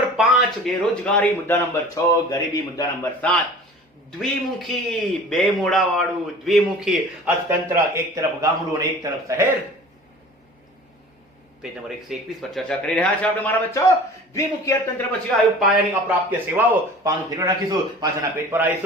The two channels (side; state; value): both; normal; correlation 0.43